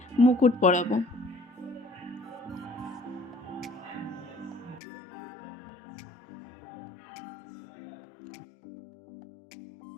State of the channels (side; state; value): right; drops out; at 4.8 s